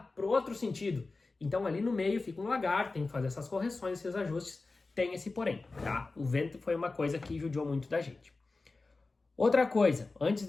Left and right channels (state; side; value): quieter; right; 3.6 dB